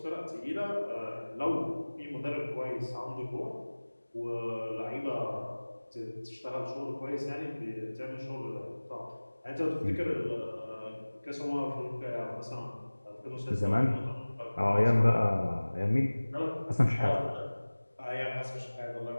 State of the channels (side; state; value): both; inverted; correlation -1.00